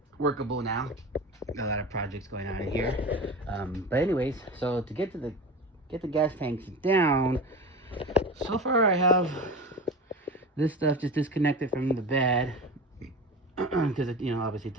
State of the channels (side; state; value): both; normal; correlation 0.30